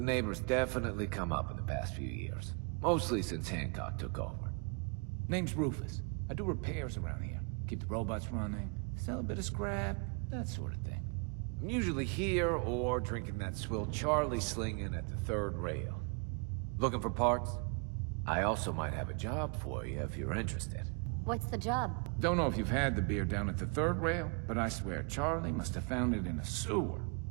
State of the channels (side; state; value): left; quieter; 35.6 dB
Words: definitely come up in the past few years. Mostly since Hancock took over. Name's Rufus. I do repairs around here. Keep the robots running, sell a bit of scrap, that sort of thing. I'm usually here or drinking that swill Charlie slinging at the third rail. Looking for parts? I also might have a job for you if you're interested. What's the job? Don't know if you've had the beer down at the third rail, but I swear Charlie must have found it in a sewer.